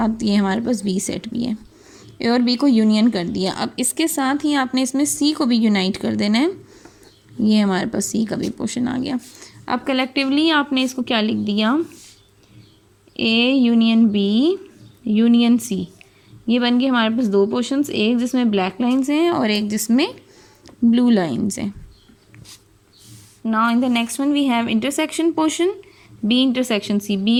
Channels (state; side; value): identical; both; correlation 1.00